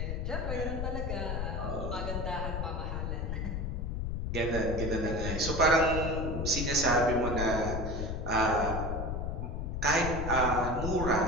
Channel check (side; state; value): left; noise; rumble, 2 dB below the sound